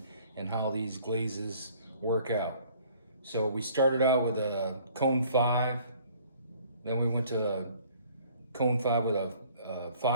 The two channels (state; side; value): inverted; both; correlation -0.56